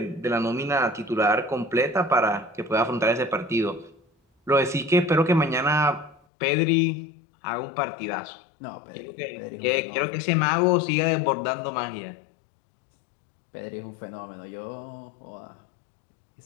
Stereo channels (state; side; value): drops out; right; at 6.2 s